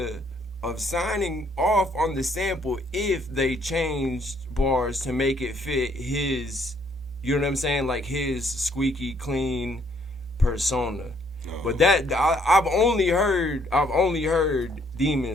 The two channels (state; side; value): normal; both; correlation 0.67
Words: of signing off on the sample if they changed bars to make it fit his, you know what I'm saying, like his squeaky clean persona. But that I've only heard